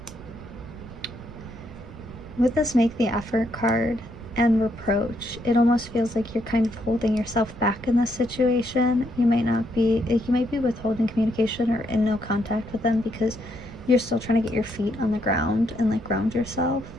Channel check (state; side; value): noise; right; rumble, 16 dB below the sound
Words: with this make the effort card and reproach, it almost feels like you're kind of holding yourself back in this situation. You might be withholding communication or in no contact with them because you're still trying to get your feet on the ground and like ground yourself